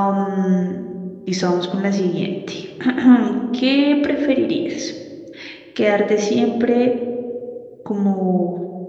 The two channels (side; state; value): both; identical; correlation 1.00